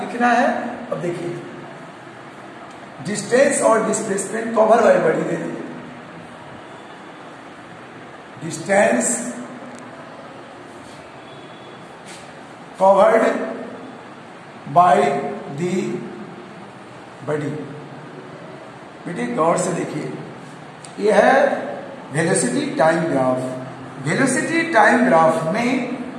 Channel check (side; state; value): both; identical; correlation 1.00